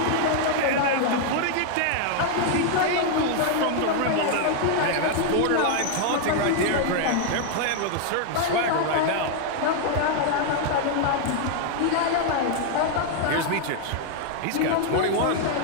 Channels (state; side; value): different; both; correlation 0.00